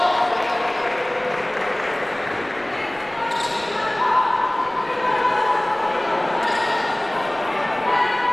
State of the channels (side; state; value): left; noise; rumble, 29 dB below the sound